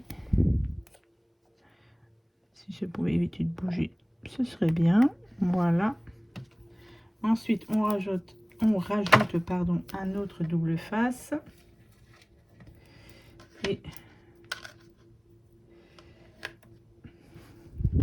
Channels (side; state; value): both; identical; correlation 1.00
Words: Si je pouvais éviter de bouger, ce serait bien. Voilà. Ensuite, on rajoute pardon, un autre double face. Et